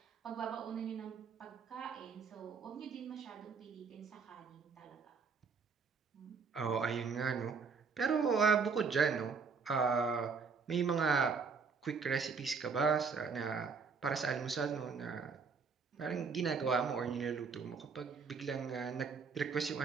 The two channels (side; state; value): left; quieter; 5.4 dB